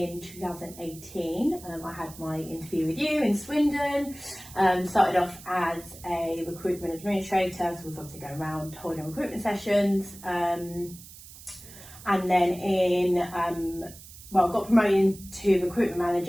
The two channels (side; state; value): right; noise; hiss, 18 dB below the sound